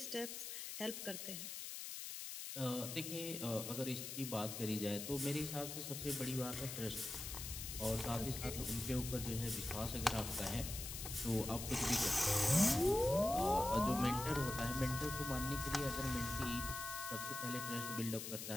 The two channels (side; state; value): left; noise; hiss, 6 dB below the sound